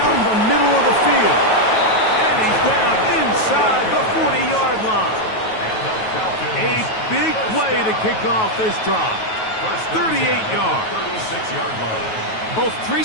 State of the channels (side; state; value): right; late; 9.3 ms